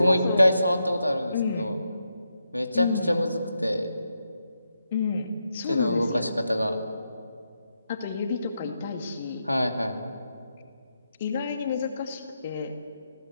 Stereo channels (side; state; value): both; inverted; correlation -0.84